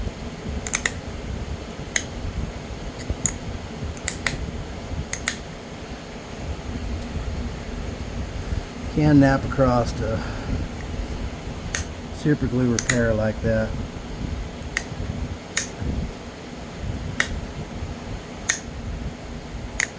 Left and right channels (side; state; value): both; identical; correlation 1.00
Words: Can nap across to super glue repair like that.